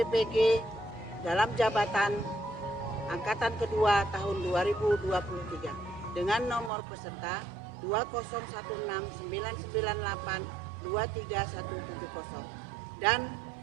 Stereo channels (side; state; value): left; drops out; at 6.7 s